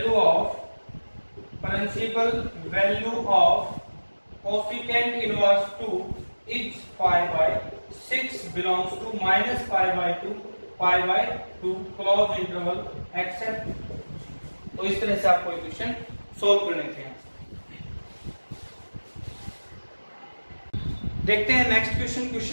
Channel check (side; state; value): both; inverted; correlation -1.00